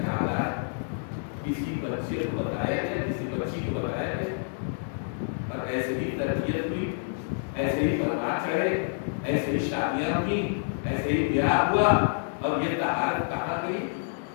ہے. کسی بچے کو بتایا ہے، کسی بچی کو بتایا ہے، اور ایسے ہی تربیت ہوئی، ایسے ہی پرواز چڑھے، ایسے ہی شادیاں ہوئی، ایسے ہی بیاہ ہوا. اور یہ طہارت کہاں گئی؟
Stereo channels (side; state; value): right; silent; digital silence